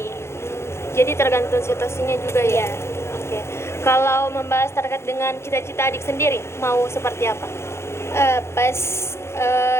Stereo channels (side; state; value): right; late; 0.13 ms